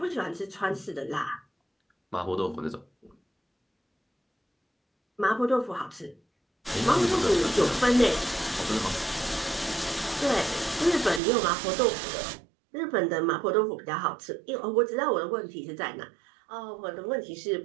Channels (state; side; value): drops out; left; at 11.2 s